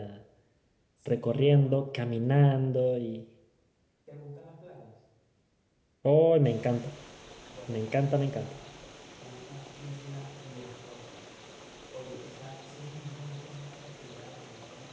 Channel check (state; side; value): identical; both; correlation 1.00